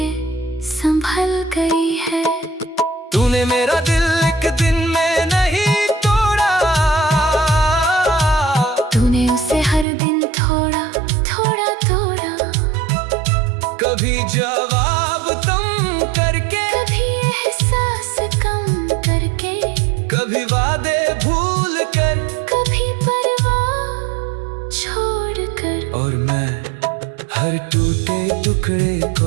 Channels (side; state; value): left; drops out; at 9.9 s